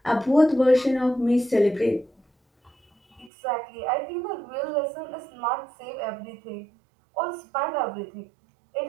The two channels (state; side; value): drops out; left; at 3.3 s